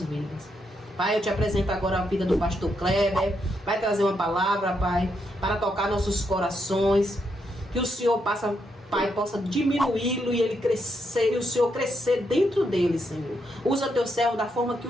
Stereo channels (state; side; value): normal; both; correlation 0.79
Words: vidas. Pai, eu te apresento agora a vida do pastor Kleber. Vai trazer uma palavra, Pai, para tocar nossos corações. Que o Senhor Pai, possa diminuí-lo e ele crescer, e o Senhor crescer dentro dele, Senhor. Usa teu servo da forma que